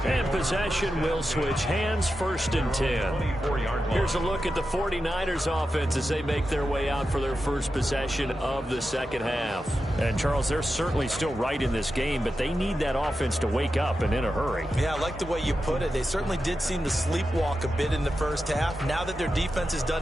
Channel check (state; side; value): normal; both; correlation 0.90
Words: And possession will switch hands, 1st and 10. Here's a look at the 49ers offense as they make their way out for their first possession of the second half. And, Charles, they're certainly still right in this game, but they need that offense to wake up and in a hurry. Yeah, I like the way you put it. They certainly did seem to sleepwalk a bit in the first half. Now that their defense has